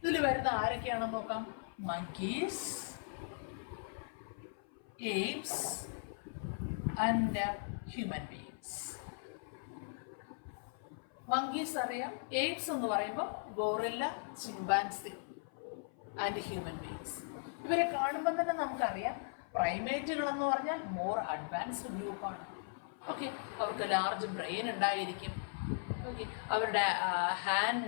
ഇതിൽ വരുന്ന ആരൊക്കെയാണെന്ന് നോക്കാം. monkeys, apes and human beings. monkeys അറിയാം. apes എന്ന് പറയുമ്പോൾ gorilla, chimpanzee and human beings. ഇവരെ കാണുമ്പോൾ തന്നെ നമുക്കറിയാം പ്രൈമേറ്റുകൾ എന്ന് പറഞ്ഞാൽ മോർ അഡ്വാൻസ്ഡ് ഗ്രൂപ്പാണ്. ഓക്കെ, അവർക്ക് ലാർജ് ബ്രെയിൻ ഉണ്ടായിരിക്കും. ഓക്കെ, അവരുടെ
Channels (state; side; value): silent; right; 52 dB below the other